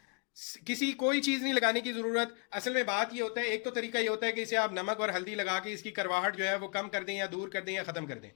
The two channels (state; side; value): quieter; right; 36.3 dB